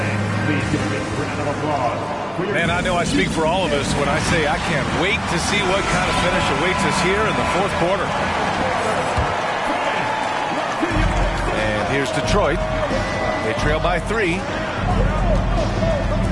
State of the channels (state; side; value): identical; both; correlation 1.00